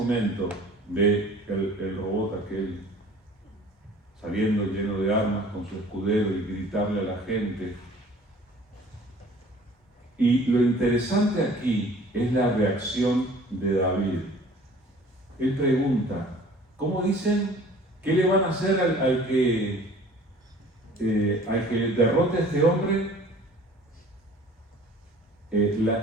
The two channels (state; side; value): normal; both; correlation 0.49